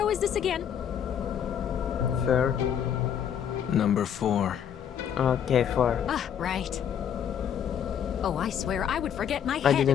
is this again? Fair. Number 4. Okay, 4. Ah, right. Oh, I swear I would forget my I head if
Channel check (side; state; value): right; quieter; 8.8 dB